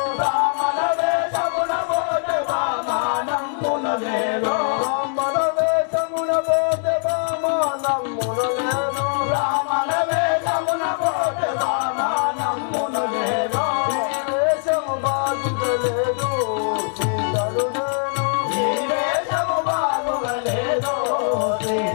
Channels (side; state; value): right; silent; 64 dB below the other